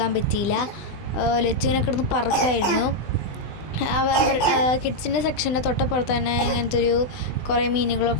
പറ്റിയില്ല. ലച്ചുവിനെ കിടന്ന് പറക്കായിരുന്നു. കിഡ്സിൻ്റെ സെക്ഷൻ്റെ തൊട്ടപ്പുറത്ത് തന്നെ ഇങ്ങനത്തെ ഒരു കുറേ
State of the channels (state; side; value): late; right; 20 ms